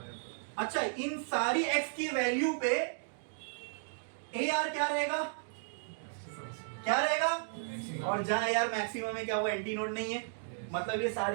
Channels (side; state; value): left; silent; digital silence